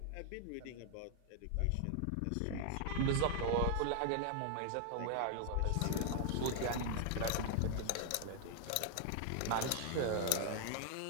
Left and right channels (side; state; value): both; different; correlation 0.00